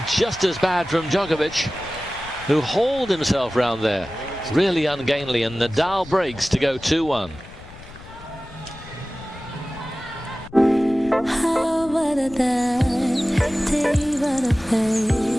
just as bad from Djokovic, who hauled himself round there. Really ungainly, and Nadal breaks to go 2-1.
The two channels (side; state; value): left; noise; rumble, 18 dB below the sound